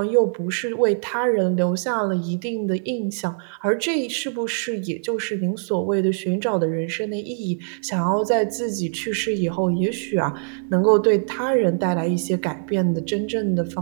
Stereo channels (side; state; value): left; silent; digital silence